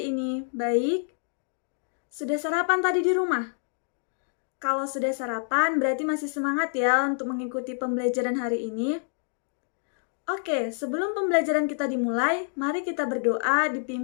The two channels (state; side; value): silent; right; digital silence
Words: ini? Baik? Sudah sarapan tadi di rumah? Kalau sudah sarapan, berarti masih semangat ya untuk mengikuti pembelajaran hari ini. Oke, sebelum pembelajaran kita dimulai, mari kita berdoa